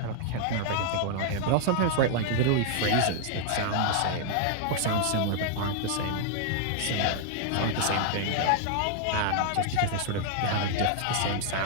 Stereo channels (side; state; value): both; different; correlation 0.00